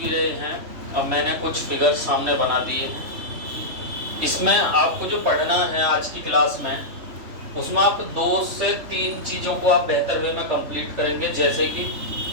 रहे हैं। अब मैंने कुछ फिगर्स सामने बना दिए। इसमें आपको जो पढ़ना है आज की क्लास में, उसमें आप 2 से 3 चीज़ों को आप बेहतर वे में कंप्लीट करेंगे। जैसे कि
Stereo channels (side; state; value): left; late; 3.5 ms